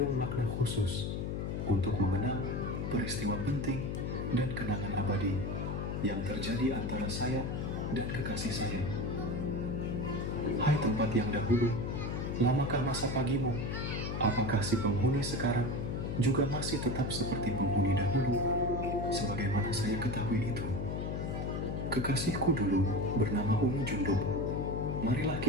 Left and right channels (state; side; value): noise; left; hum, 2 dB below the sound